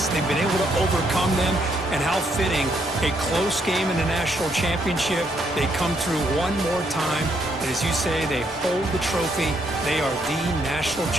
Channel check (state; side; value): noise; right; rumble, 23 dB below the sound